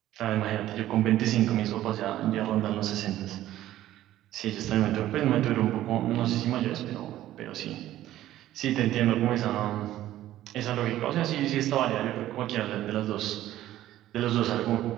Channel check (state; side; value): quieter; left; 13.8 dB